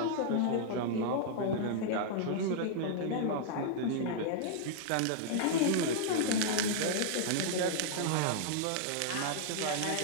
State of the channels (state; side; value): different; both; correlation -0.01